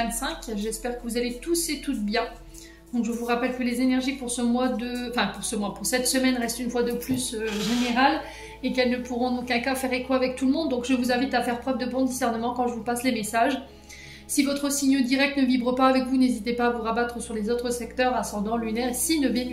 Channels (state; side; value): identical; both; correlation 1.00